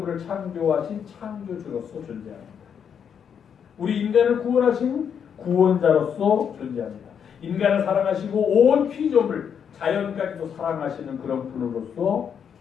창조하신 창조주로서 존재합니다. 우리 인간을 구원하신 구원자로서 존재합니다. 인간을 사랑하시고 온 피조물, 자연까지도 사랑하시는 그런 분으로서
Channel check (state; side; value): quieter; right; 7.7 dB